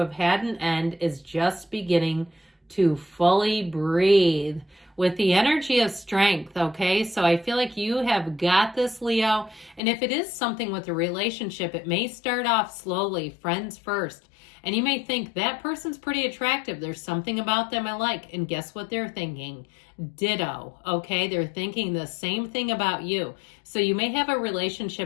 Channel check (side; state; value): right; drops out; at 9.8 s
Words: had an end is just beginning to fully breathe with the energy of strength, okay? So I feel like you have got this, Leo. And if it is something with a relationship, it may start off slowly, friends first. And you may think that person's pretty attractive. There's something about them I like. And guess what they're thinking? Ditto, okay? They're thinking the same thing about you. So you may have a